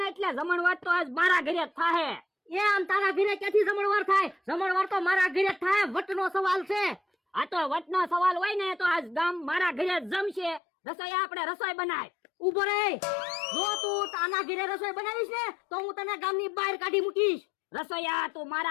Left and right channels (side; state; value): right; drops out; at 10.6 s